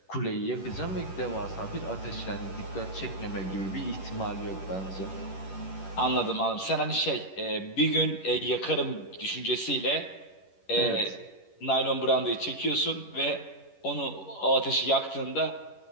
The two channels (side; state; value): right; late; 11 ms